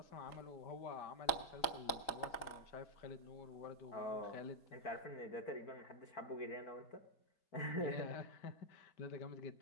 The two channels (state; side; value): late; right; 3.9 ms